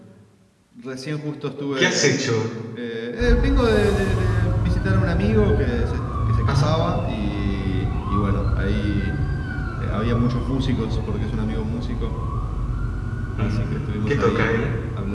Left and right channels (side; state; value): both; identical; correlation 1.00